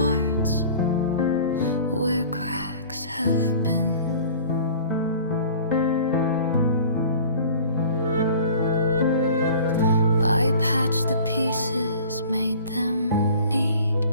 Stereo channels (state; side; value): inverted; both; correlation -0.45